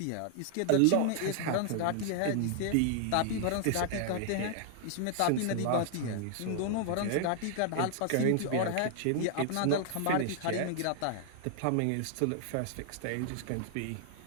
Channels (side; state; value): both; different; correlation 0.00